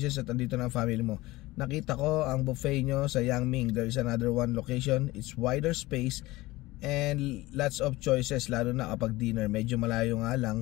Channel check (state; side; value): quieter; right; 19.4 dB